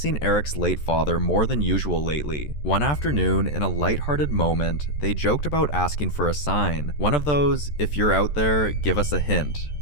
Eric's late father more than usual lately. One afternoon, in a lighthearted moment, they joked about asking for a sign. One of those, "if you're out there, give us a hint."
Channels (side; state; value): right; late; 14 ms